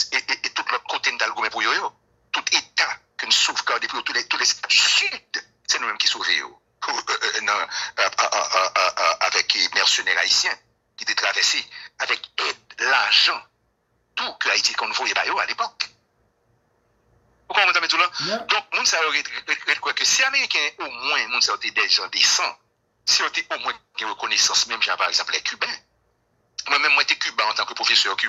et tout l'autre côté nous avons gourmé pour eux. Tout État que nous sauvegardons pour tous les États du Sud, c'est nous-mêmes qui sauvons avec les mercenaires haïtiens qui étaient traversés avec aide, l'argent tout que Haïti qu'on voyait à l'époque. Vous comprenez tout là? Yeah. Donc, moun sa quoi que si Américains, au moins, moun sa des gens décents, si on était au moins une reconnaissance, même par exemple les Cubains. Moi-même, moi, j'étais cubain en tant que professeur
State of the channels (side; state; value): both; identical; correlation 1.00